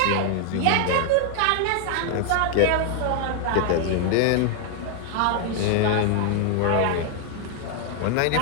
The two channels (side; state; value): both; different; correlation 0.00